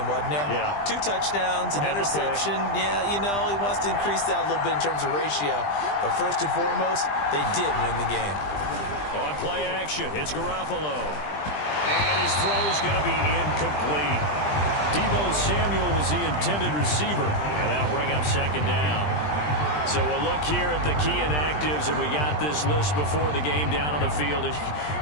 wasn't there? Yeah. 2 touchdowns, an interception. Yeah, you know, he wants to increase that a little bit in terms of ratio. But first and foremost, they did win the game. On play action, it's Garoppolo. And his throw's going to be incomplete. Deebo Samuel was the intended receiver. And that'll bring up second down. So we'll look here at the key inactives, and we got this list before the game down on the field.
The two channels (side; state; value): right; late; 20 ms